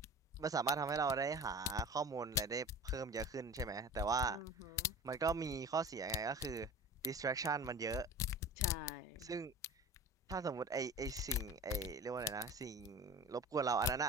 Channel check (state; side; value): normal; both; correlation 0.36